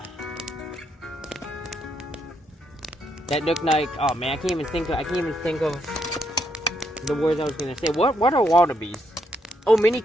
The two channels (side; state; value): both; normal; correlation 0.76